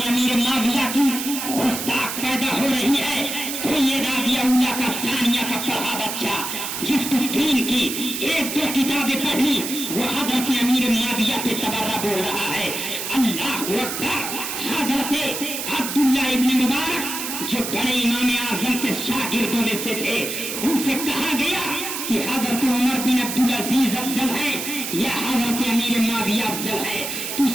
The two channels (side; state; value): right; noise; hiss, 5 dB below the sound